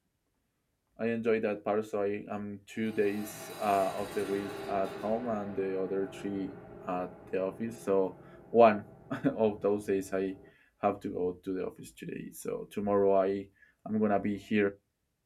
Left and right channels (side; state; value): both; identical; correlation 1.00